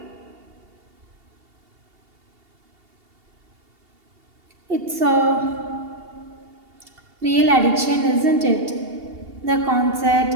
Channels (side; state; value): left; late; 2.8 ms